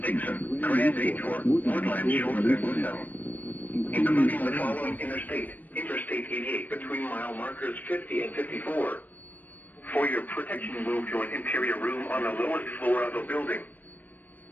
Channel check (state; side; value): late; right; 0.082 ms